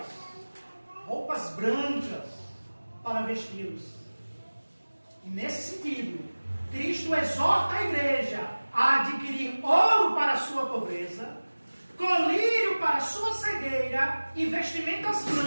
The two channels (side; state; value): both; inverted; correlation -1.00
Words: brancas para vesti-los. E nesse sentido, Cristo exorta a igreja a adquirir ouro para a sua pobreza, colírio para a sua cegueira e vestimentas